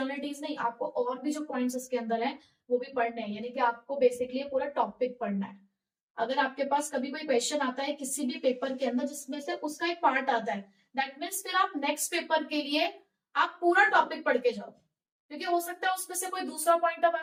नहीं, आपको और भी जो पॉइंट्स इसके अंदर है वो भी पढ़ने हैं, यानी कि आपको बेसिकली पूरा टॉपिक पढ़ना है। अगर आपके पास कभी कोई क्वेश्चन आता है किसी भी पेपर के अंदर जिसमें से उसका एक पार्ट आता है, दैट मीन्स फिर आप नेक्स्ट पेपर के लिए आप पूरा टॉपिक पढ़ के जाओ, क्योंकि हो सकता है उसमें से कोई दूसरा पॉइंट अब आ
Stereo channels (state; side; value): identical; both; correlation 1.00